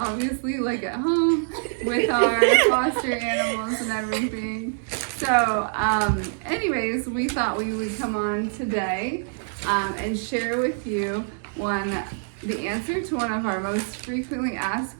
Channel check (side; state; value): left; silent; digital silence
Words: like at home with our foster animals and everything. So, anyways, we thought we would come on today and share with you the answer to one of our most frequently